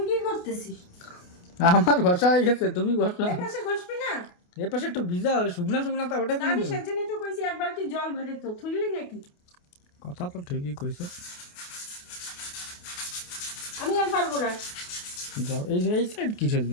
কি করতেছিস? আমার ঘষা হয়ে গেছে, তুমি ঘষা। এই পাশে ঘষবি না? এর পাশে একটু ভিজা শুকনা শুকনা তা ওটা আমি সেজন্যই তো কইছি এক বালতি জল ভরে তো থুইলি নাকি। কথা তো ঠিকই কইছো। আমি আর পারবো না। যাও, এই সাইড কিসের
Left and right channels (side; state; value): right; late; 28 ms